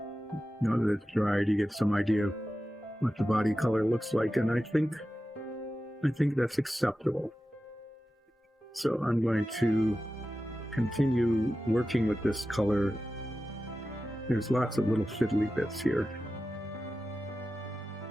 that it's dried, you get some idea of what the body color looks like, and I think that's acceptable. So I'm going to continue working with this color. There's lots of little fiddly bits here.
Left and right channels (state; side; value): normal; both; correlation 0.93